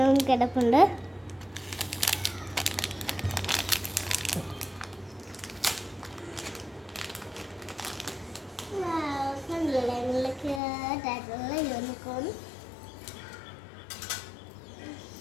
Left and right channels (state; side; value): drops out; right; at 10.6 s